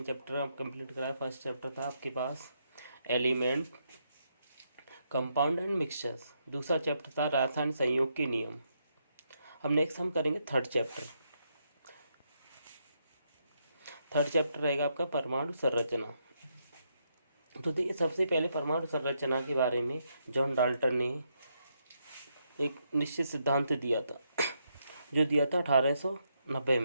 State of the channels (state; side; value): inverted; both; correlation -0.78